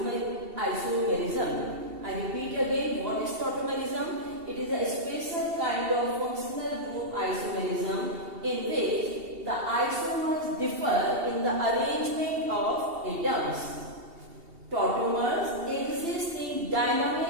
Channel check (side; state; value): left; late; 2.7 ms